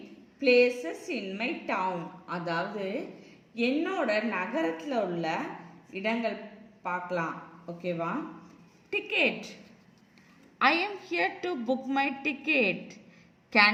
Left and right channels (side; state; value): both; identical; correlation 1.00